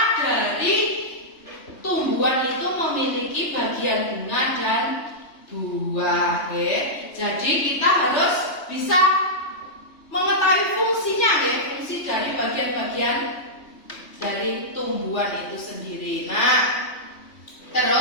dari tumbuhan itu memiliki bagian bunga dan buah. Jadi kita harus bisa mengetahui tumbuhan itu sendiri. Nah,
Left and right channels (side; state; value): right; late; 3.2 ms